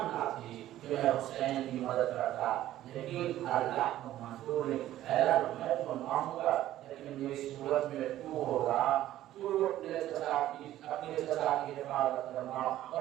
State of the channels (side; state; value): left; quieter; 13.6 dB